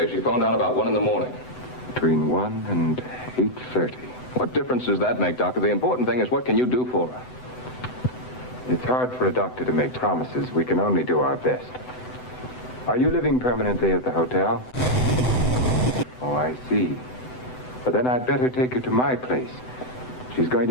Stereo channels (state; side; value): late; right; 7.9 ms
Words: she phoned out about 1 in the morning. Between 1 and 8:30. What difference does that make, Doctor? The important thing is, what can you do for her? It's hard for a doctor to make promises. We can only do our best. Are you living permanently at the hotel? Oh, I see. But then I'd better take her to my place. She's going